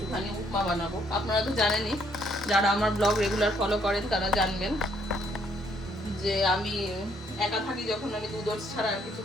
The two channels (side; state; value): both; normal; correlation 0.68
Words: উপমা বানাবো। আপনারা তো জানেনই, যারা আমার ব্লগ রেগুলার ফলো করেন তারা জানবেন যে আমি একা থাকি যখন, আমি দুধ ওটস ছাড়া আর কিছু